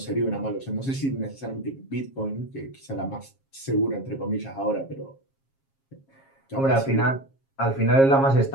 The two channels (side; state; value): right; late; 7.4 ms